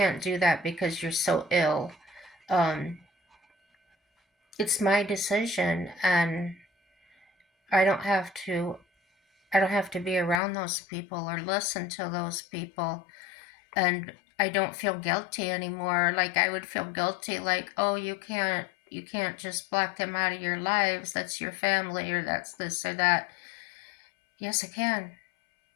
do that because you're so ill. Um, it's my decision, and I don't have to. I don't have to be around those people or listen to those people, and I don't feel guilty anymore. Like I would feel guilty, like, oh, you can't just block them out of your lives. That's your family, or that's this or that. Yes, I can.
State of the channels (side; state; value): right; drops out; at 10.4 s